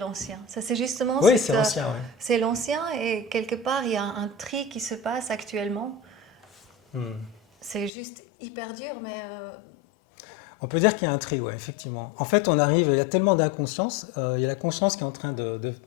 Ça, c'est justement Oui, c'est ancien, oui. c'est l'ancien et quelque part, il y a un tri qui se passe actuellement. C'est juste hyper dur, mais On peut dire qu'il y a un tri, ouais, effectivement. En fait, on arrive, il y a tellement d'inconscience, il y a la conscience qui est en train de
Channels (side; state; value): right; drops out; at 7.9 s